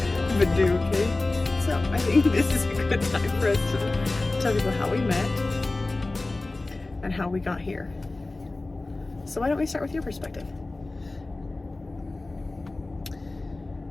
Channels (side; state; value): right; quieter; 3.1 dB